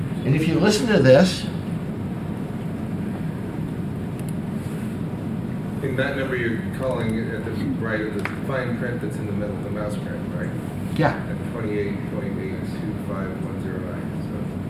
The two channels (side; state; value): both; identical; correlation 1.00